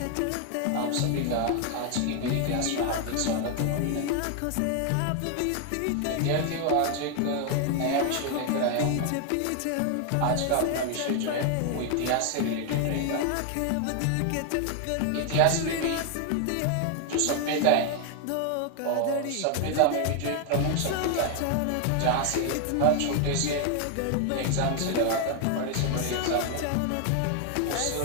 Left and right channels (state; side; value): different; both; correlation 0.00